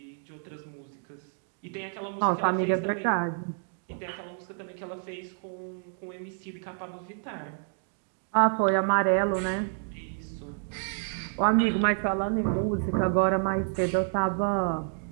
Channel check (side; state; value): left; silent; 57 dB below the other